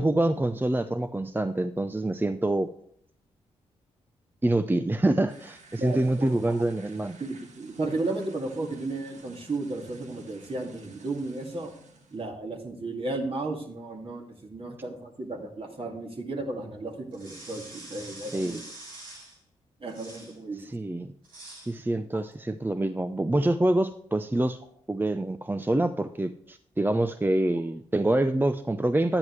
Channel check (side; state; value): both; normal; correlation 0.92